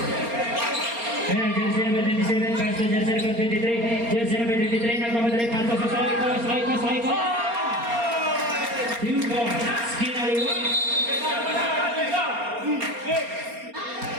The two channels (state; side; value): late; left; 4.3 ms